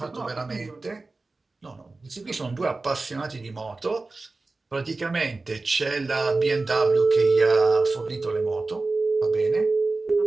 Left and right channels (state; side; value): quieter; left; 3.5 dB